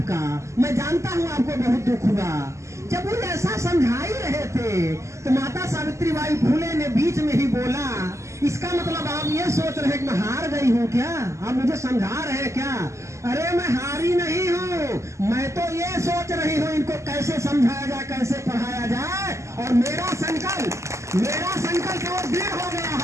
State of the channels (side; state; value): left; late; 0.14 ms